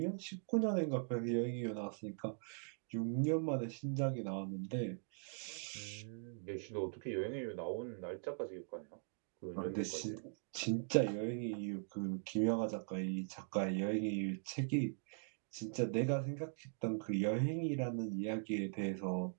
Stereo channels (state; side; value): silent; left; digital silence